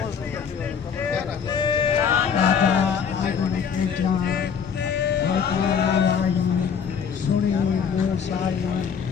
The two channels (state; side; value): quieter; right; 7.0 dB